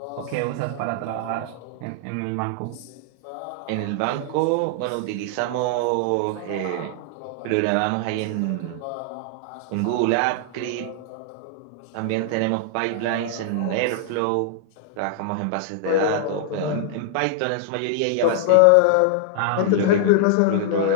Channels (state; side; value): different; both; correlation -0.01